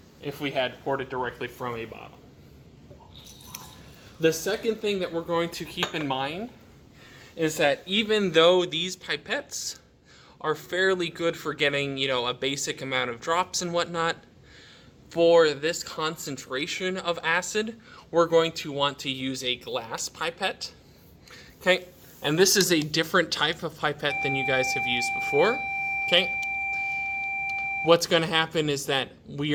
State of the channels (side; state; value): both; identical; correlation 1.00